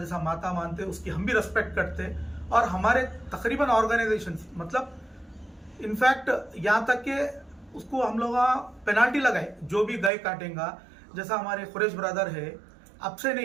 माता मानते, उसकी हम भी रेस्पेक्ट करते। और हमारे तकरीबन ऑर्गेनाइजेशंस, मतलब इनफैक्ट यहाँ तक कि उसको हम लोग पेनाल्टी लगाए, जो भी गाय काटेगा, जैसा हमारे खुरेश ब्रदर है, अब से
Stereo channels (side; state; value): left; drops out; at 10.1 s